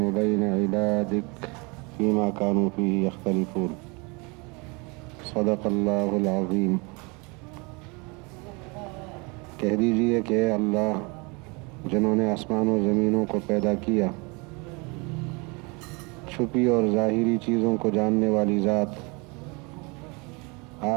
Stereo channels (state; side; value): quieter; left; 29.0 dB